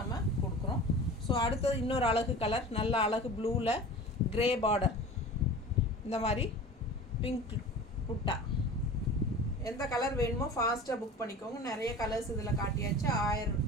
கொடுக்குறோம். ஸோ அடுத்தது இன்னொரு அழகு கலர், நல்ல அழகு ப்ளூவில் கிரே பார்டர், இந்த மாதிரி பிங்க் புட்டா. எந்த கலர் வேணுமோ ஃபாஸ்ட்டாக புக் பண்ணிக்கோங்க. நிறைய கலர்ஸ் இதில் காட்டியாச்சு.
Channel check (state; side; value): normal; both; correlation 0.38